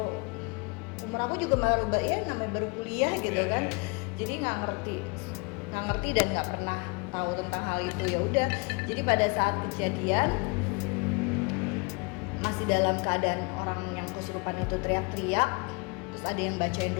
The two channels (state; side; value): quieter; right; 30.4 dB